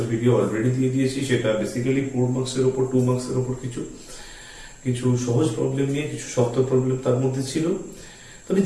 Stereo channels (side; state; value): both; identical; correlation 1.00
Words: ভিডিও অলরেডি দিয়ে দিয়েছি। সেটা বেসিক্যালি 4 মার্কসের উপর 2 মার্কসের উপর কিছু কিছু সহজ প্রবলেম নিয়ে, কিছু শক্ত প্রবলেম তার মধ্যে ছিল। তবে